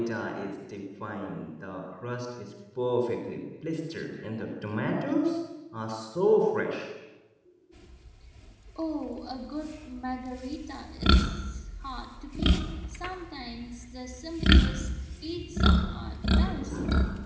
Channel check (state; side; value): identical; both; correlation 1.00